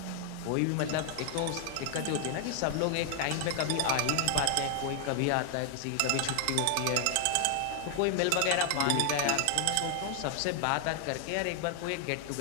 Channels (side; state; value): both; different; correlation 0.00